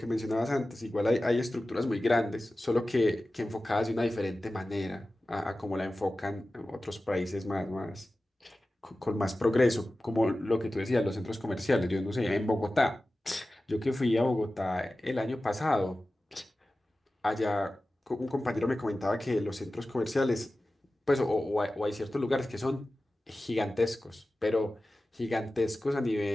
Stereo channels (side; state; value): both; normal; correlation 0.95